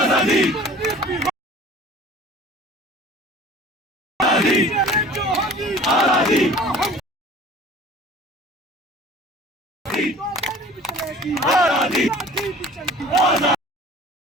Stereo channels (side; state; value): both; normal; correlation 0.46